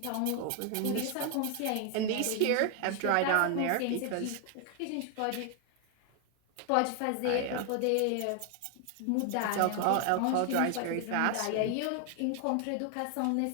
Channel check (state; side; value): different; both; correlation 0.00